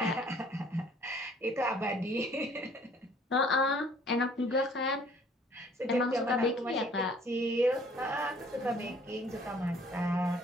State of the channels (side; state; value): both; normal; correlation 0.57